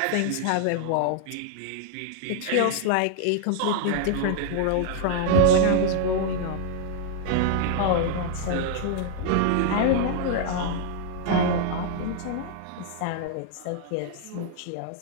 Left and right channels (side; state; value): both; different; correlation -0.01